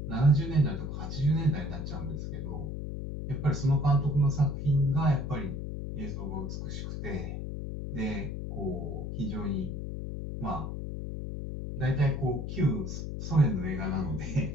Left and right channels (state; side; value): noise; left; hum, 5 dB below the sound